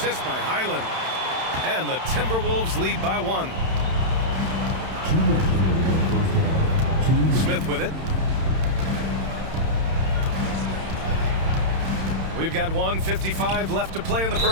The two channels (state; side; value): late; left; 31 ms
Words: by Highland. And the Timberwolves lead by 1. Smith with it. We've got 1:55 left to play in the